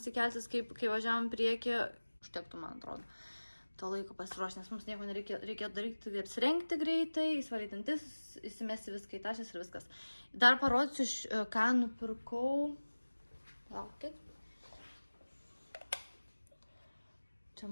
keltis, kai važiavam priekį, užtektų, man atrodo. To laiko pasiruošti, nes mums nieko nereikėjo daryti, tai apsirengti greitai, įsivalyti dantis, įsimesti viską į tašės ir viskas. Dar parodysiu, ką nupirkau. Laukit. Čia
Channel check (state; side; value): inverted; both; correlation -1.00